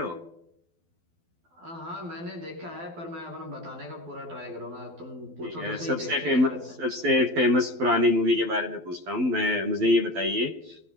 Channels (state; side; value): late; left; 12 ms